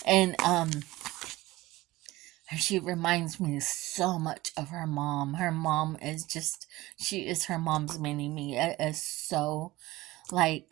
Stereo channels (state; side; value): quieter; left; 18.7 dB